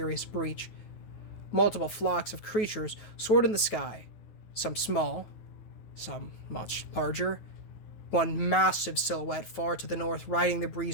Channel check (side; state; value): right; late; 9.2 ms